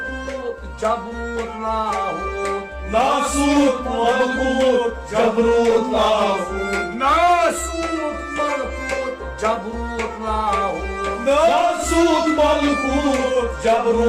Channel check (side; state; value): both; identical; correlation 1.00